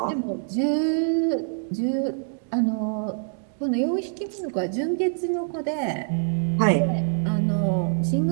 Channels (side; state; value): left; silent; digital silence